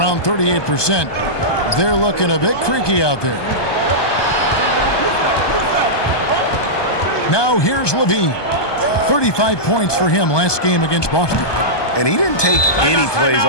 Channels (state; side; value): late; right; 1.2 ms